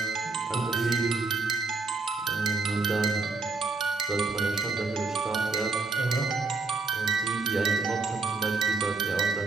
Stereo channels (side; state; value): left; quieter; 4.0 dB